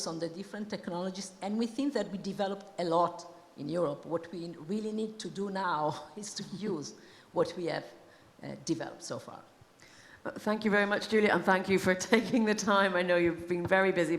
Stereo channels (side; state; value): both; identical; correlation 1.00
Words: on the different technologies, and we think that we developed a lot in Europe. What we really need to do now is to use what we have developed so far. Thank you very much, Giulia, and thank you for taking the time. I know you've been very busy,